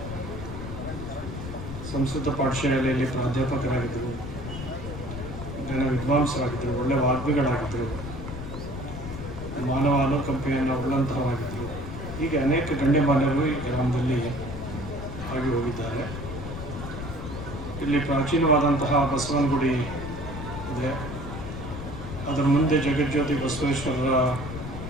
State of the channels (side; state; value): left; noise; rumble, 8 dB below the sound